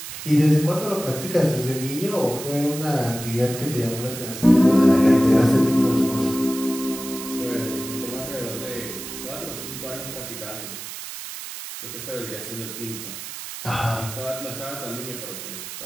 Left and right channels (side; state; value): right; noise; hiss, 10 dB below the sound